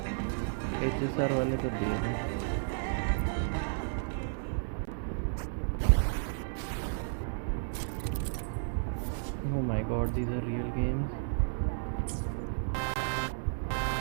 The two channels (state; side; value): silent; left; 56 dB below the other